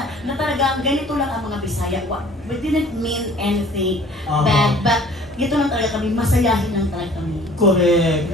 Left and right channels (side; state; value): both; normal; correlation 0.51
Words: na talagang ganito lang ang mga Bisaya. We didn't mean anything bad, but ito lang talaga kami, masayahin lang talaga kami.